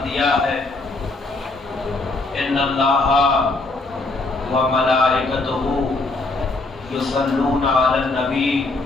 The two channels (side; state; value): right; quieter; 3.3 dB